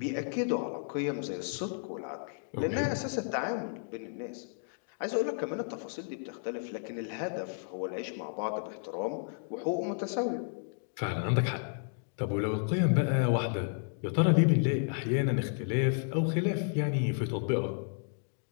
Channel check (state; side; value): silent; right; digital silence